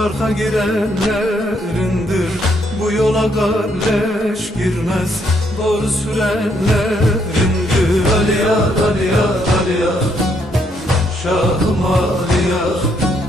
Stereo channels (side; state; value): both; normal; correlation 0.73